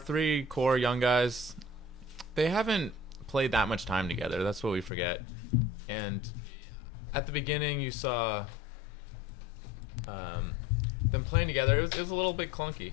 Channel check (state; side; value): drops out; right; at 4.9 s